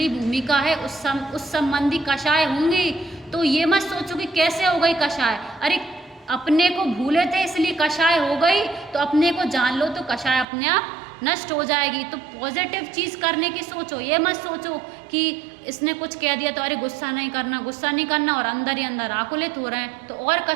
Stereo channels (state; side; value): drops out; left; at 10.5 s